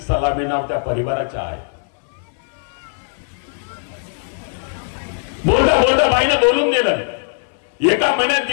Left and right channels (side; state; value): right; silent; digital silence